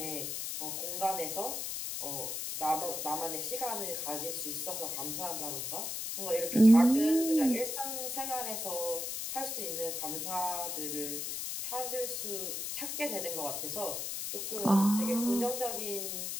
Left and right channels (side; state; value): left; noise; hiss, 3 dB below the sound